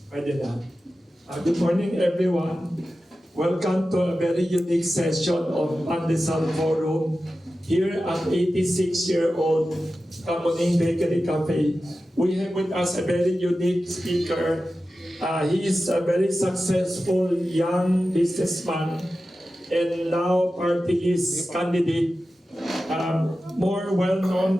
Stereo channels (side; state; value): both; normal; correlation 0.93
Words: Pwede na. Good morning, everyone. Welcome to a very unique session of Pandesal Forum here at 86-year-old Kamuning Bakery Cafe. We have with us a very unique speaker. He is a very successful young businessman and now party list candidate, more well